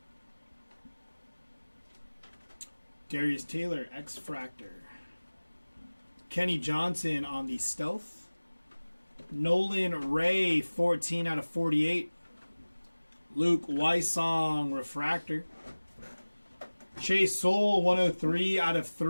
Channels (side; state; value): both; inverted; correlation -1.00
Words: Darius Taylor, X-Fractor. Kenny Johnson on the Stealth. Nolan Ray, 14 out of 48. Luke Weissong, refractor. Chase Soul, 103 out of